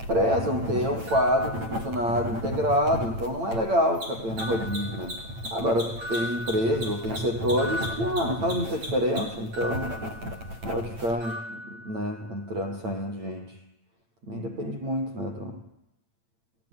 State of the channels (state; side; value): late; left; 8.9 ms